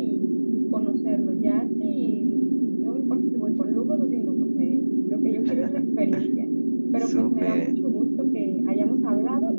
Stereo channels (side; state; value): both; inverted; correlation -1.00